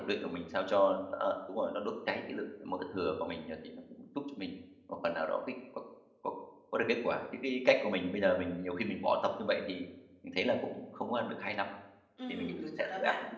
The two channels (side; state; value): both; identical; correlation 1.00